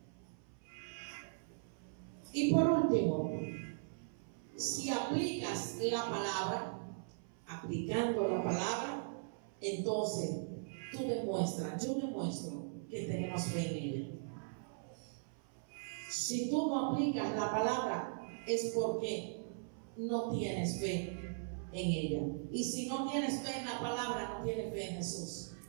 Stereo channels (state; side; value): silent; left; 52 dB below the other